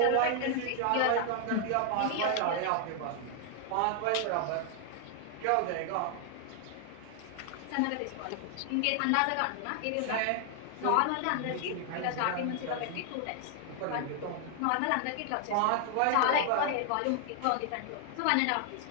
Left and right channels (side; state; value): both; different; correlation 0.00